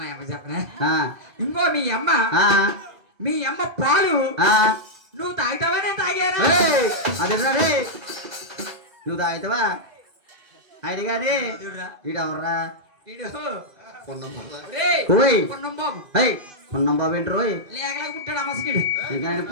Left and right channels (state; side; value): late; left; 2.0 ms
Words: అమ్మ చెప్పనా ఆ, ఇంకో ఆ, మీ అమ్మ పాలు ఆ, నువ్వు తాగుతావా నేను తాగాను ఏయ్, అదేరా రే నువ్వు తాగుతావా ఆయన గాని వీడెవర్రా ఓయ్ పొన్నం బాబు అయ్ పొన్నం బాబు ఏంటి రోయ్ లేకలా పుట్టాడు అమ్మసికిడు ఇంకా ఆయన